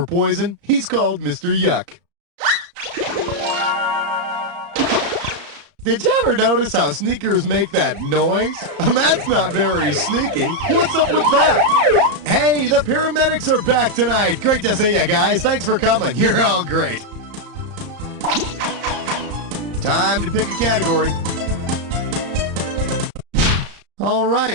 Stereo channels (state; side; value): late; left; 34 ms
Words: poison, he's called Mr. Yuck. Did you ever notice how sneakers make that noise? That's not very sneaky. What's up with that? Hey, the paramedics are back tonight. Great to see you guys. Thanks for coming. You're all great. Time to pick a category. All